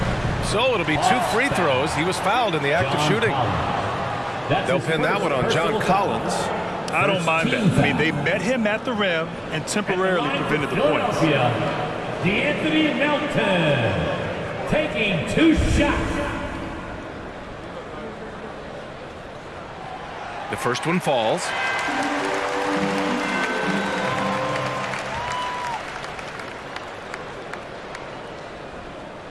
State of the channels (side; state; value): both; identical; correlation 1.00